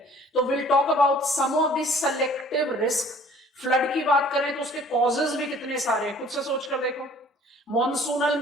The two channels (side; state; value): both; normal; correlation 0.53